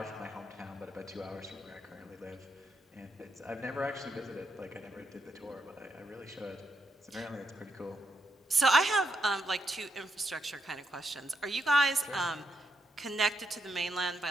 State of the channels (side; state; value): both; normal; correlation 0.81